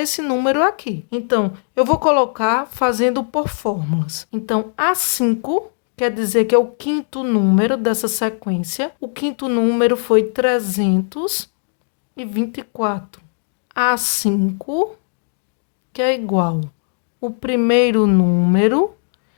esse número aqui. Então, eu vou colocar fazendo por fórmulas. Então, A5 quer dizer que é o 5º número dessa sequência. O 5º número foi 324. A5, que é igual o primeiro número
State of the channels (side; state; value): right; silent; digital silence